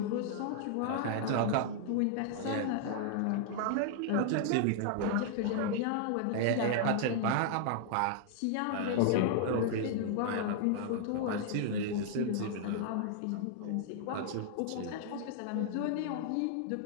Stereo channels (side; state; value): both; different; correlation -0.01